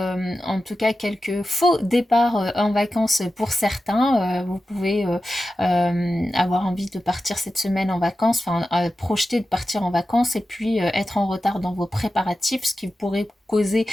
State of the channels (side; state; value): both; normal; correlation 0.93